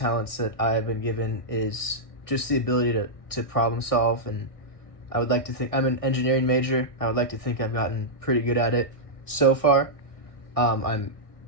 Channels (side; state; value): right; late; 1.6 ms